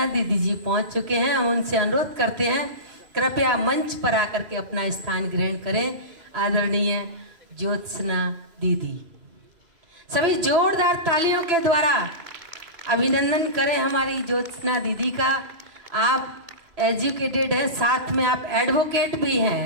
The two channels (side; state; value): left; late; 3.0 ms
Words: दीदी जी पहुंच चुके हैं। हम उनसे अनुरोध करते हैं कृपया मंच पर आकर के अपना स्थान ग्रहण करें। आदरणीय ज्योत्सना दीदी, सभी जोरदार तालियों के द्वारा अभिनंदन करें हमारी ज्योत्सना दीदी का। आप एजुकेटेड हैं, साथ में आप एडवोकेट भी हैं,